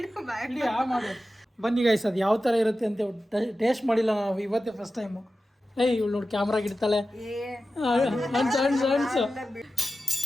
ಇಡೀ ಮಾಡು. ಬನ್ನಿ ಗೈಸ್, ಅದು ಯಾವ ಥರ ಇರುತ್ತೆ ಅಂತ ಟೇಸ್ಟ್ ಮಾಡಿಲ್ಲ ನಾವು, ಇವತ್ತೇ ಫಸ್ಟ್ ಟೈಮು. ಏಯ್ ಇವಳು ನೋಡಿ ಕ್ಯಾಮ್ರಾಗ ಇಡ್ತಾಳೆ. ಅನ್ಸು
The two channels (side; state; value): both; normal; correlation 0.93